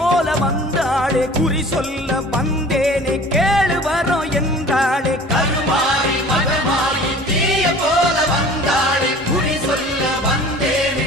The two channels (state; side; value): normal; both; correlation 0.45